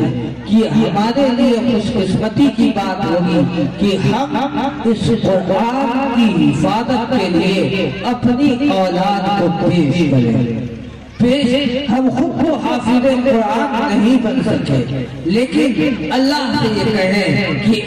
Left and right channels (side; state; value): both; identical; correlation 1.00